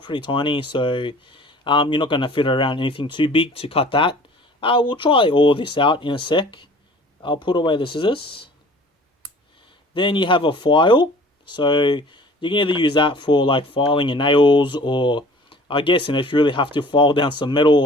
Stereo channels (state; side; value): normal; both; correlation 0.48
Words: tiny, so you're not going to fit around anything too big to cut that. We'll try all this out in a sec. I'll put away the scissors. Then you have a file. So you can either use that for like filing your nails, or I guess, if you really have to, file down some metal